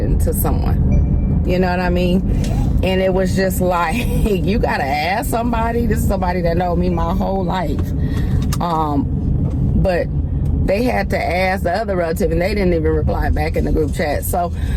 to someone. You know what I mean? And it was just like, you gotta ask somebody. This is somebody that knows me my whole life. But they had to ask the other relative, and they didn't even reply back in the group chat. So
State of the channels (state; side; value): identical; both; correlation 1.00